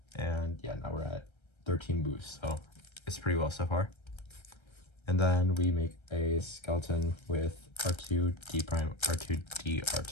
And yeah, now we're at 13 boosts, so it's pretty well so far. And then we make a skeleton with R2, D prime, R2, D,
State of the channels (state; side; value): late; right; 1.3 ms